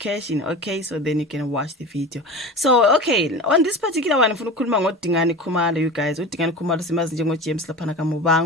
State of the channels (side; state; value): both; normal; correlation 0.31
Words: Okay, so then you can watch the video. So okay, on this particular one ngifuna ukukhuluma ngoDingani Khumalo, you guys. uDingani Khumalo simazi njengo James laphana